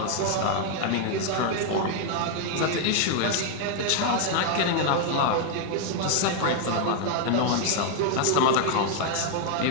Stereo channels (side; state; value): both; different; correlation 0.00